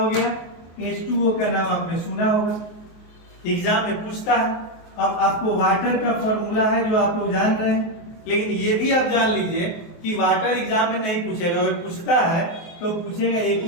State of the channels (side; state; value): right; late; 23 ms